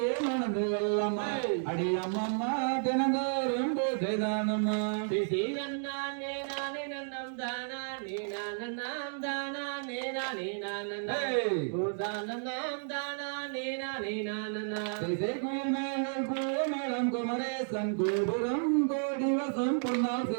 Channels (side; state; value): left; silent; digital silence